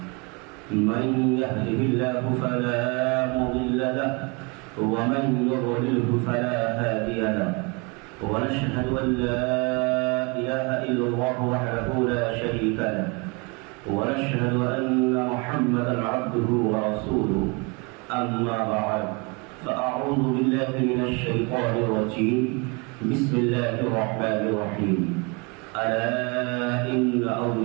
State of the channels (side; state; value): left; quieter; 30.4 dB